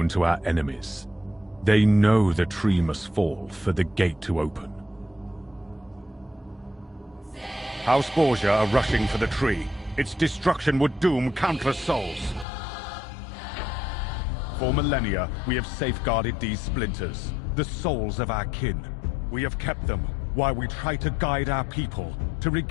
to our enemies. They know the tree must fall for the gate to open. House Borgia are rushing for the tree. Its destruction would doom countless souls. For millennia, we have safeguarded these splinters, the souls of our kin. We have kept them while we try to guide our people to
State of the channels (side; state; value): right; drops out; at 12.5 s